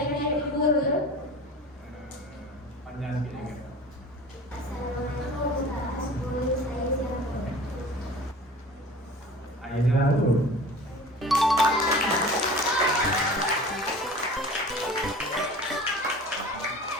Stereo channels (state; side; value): normal; both; correlation 0.40